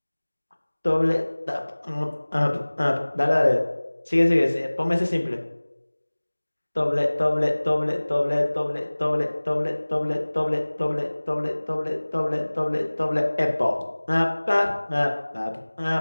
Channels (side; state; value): both; inverted; correlation -1.00